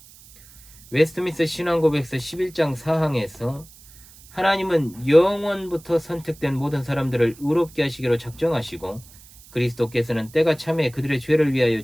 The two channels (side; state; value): right; noise; hiss, 23 dB below the sound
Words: 웨스트민스터 신앙고백서 11장 4항에서 하나님은 영원부터 선택된 모든 사람들을 의롭게 하시기로 작정하시고 그리스도께서는 때가 참에 그들의 죄를